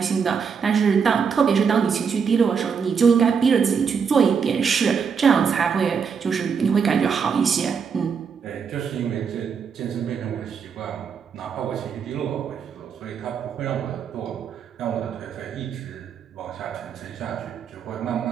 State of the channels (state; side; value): quieter; left; 6.3 dB